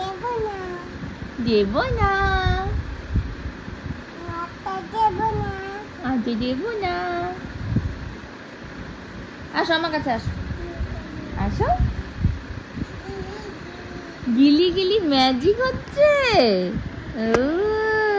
দেব না, আজ দেব না। আসো আমার কাছে, আসো আসো। গিলি গিলি ম্যাজিক হচ্ছে।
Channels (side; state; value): both; identical; correlation 1.00